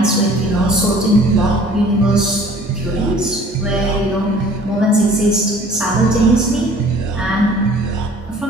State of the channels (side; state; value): both; normal; correlation 0.51